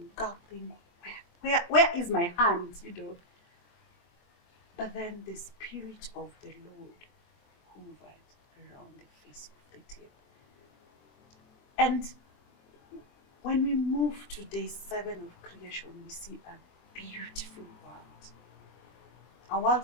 God, where is my hand, you know? But then the Spirit of the Lord hovered around the face of the deep. And when we move to day 7 of creation, we see a beautiful world. A world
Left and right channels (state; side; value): late; right; 23 ms